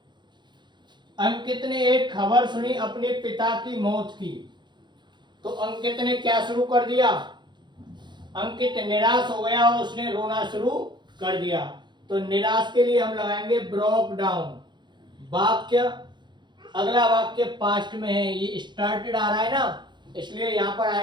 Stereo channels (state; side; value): late; left; 0.22 ms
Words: Ankit ने एक खबर सुनी अपने पिता की मौत की, तो अंकित ने क्या शुरू कर दिया? अंकित निराश हो गया और उसने रोना शुरू कर दिया। तो निराश के लिए हम लगाएंगे ब्रोक डाउन। वाक्य, अगला वाक्य पास्ट में है, ये स्टार्टेड आ रहा है ना, इसलिए यहां पर